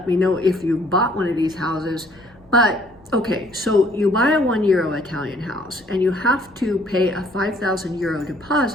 me know if you bought one of these houses. But okay, so you buy a €1 Italian house and you have to pay a €5,000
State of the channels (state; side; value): noise; left; rumble, 28 dB below the sound